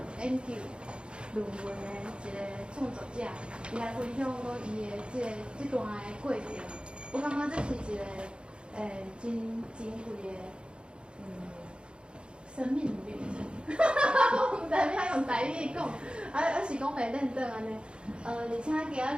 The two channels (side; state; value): left; late; 0.054 ms